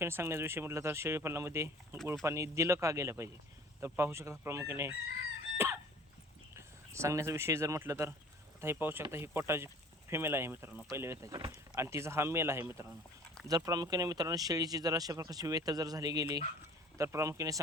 सांगण्याचा विषय म्हटलं तर शेळीपालनामध्ये गुळ पाणी दिलं का गेलं पाहिजे. तर पाहू शकता प्रामुख्याने सांगण्याचा विषय जर म्हटलं तर आता हे पाहू शकता, ही कोटाची फिमेल आहे मित्रांनो पहिल्या वेताची, आणि तिचा हा मेल आहे मित्रांनो. जर प्रामुख्याने मित्रांनो शेळीची जर अशा प्रकारची वेत जर झाली गेली तर प्रामुख्याने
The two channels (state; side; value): normal; both; correlation 0.47